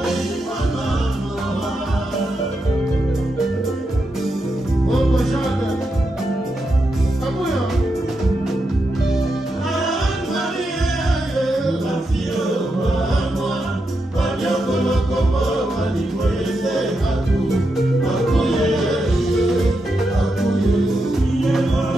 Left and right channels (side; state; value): both; normal; correlation 0.85